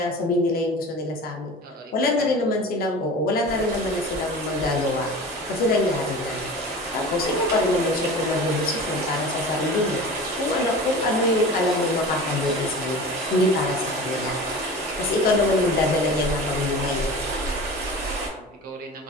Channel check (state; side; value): normal; both; correlation 0.35